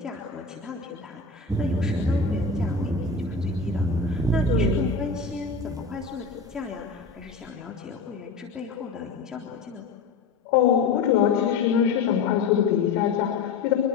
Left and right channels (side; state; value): right; quieter; 4.6 dB